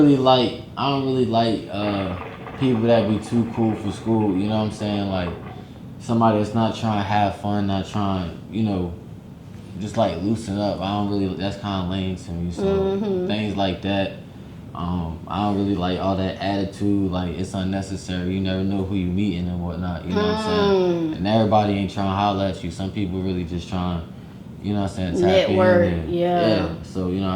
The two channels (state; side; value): identical; both; correlation 1.00